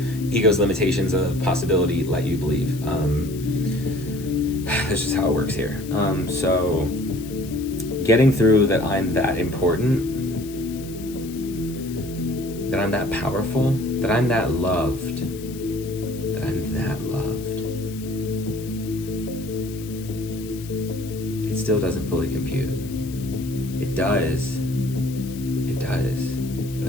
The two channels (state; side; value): noise; left; hiss, 17 dB below the sound